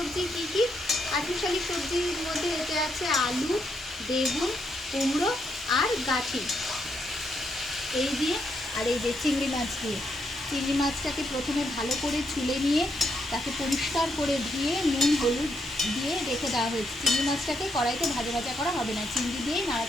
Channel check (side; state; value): both; normal; correlation 0.78